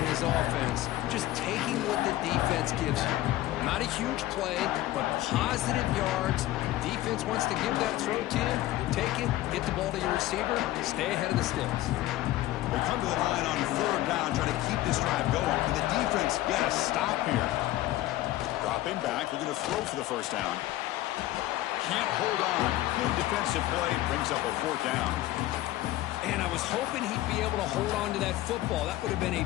his offense just taking what the defense gives you. Not a huge play, but positive yards. Defense wants to give that throw to you. You take it, get the ball to your receiver, stay ahead of the sticks. They come to the line on 3rd down, trying to keep this drive going. Can the defense get a stop here? Dropping back, looking to throw for the first down. Can't hold on. Good defensive play, brings up a 4th down. And I was hoping he'd be able to hold on to that football. That would have been a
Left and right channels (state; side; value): quieter; right; 15.6 dB